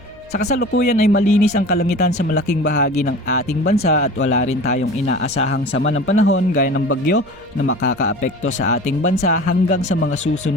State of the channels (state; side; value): noise; right; hum, 26 dB below the sound